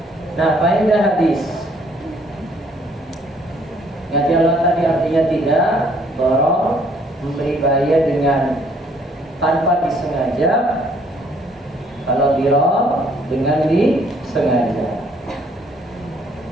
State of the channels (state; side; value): normal; both; correlation 0.64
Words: Nah, faedah hadis. Ngaji Allah tadi artinya tidak dorong, memberi bahaya dengan tanpa disengaja. Kalau dirong dengan disengaja.